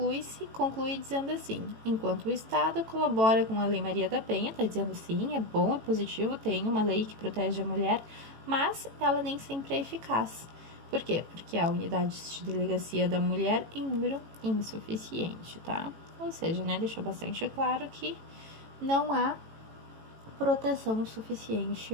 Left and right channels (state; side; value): late; left; 18 ms